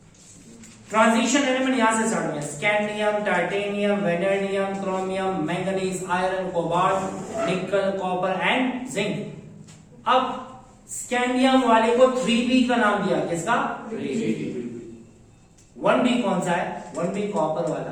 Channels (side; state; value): both; identical; correlation 1.00